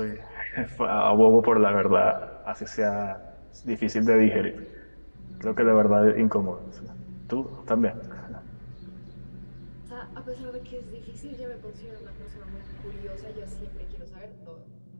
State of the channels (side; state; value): both; inverted; correlation -1.00